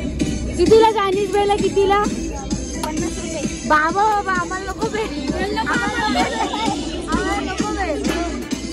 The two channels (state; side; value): identical; both; correlation 1.00